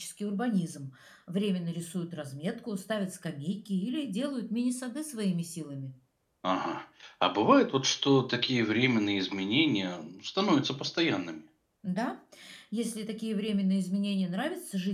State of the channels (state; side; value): identical; both; correlation 1.00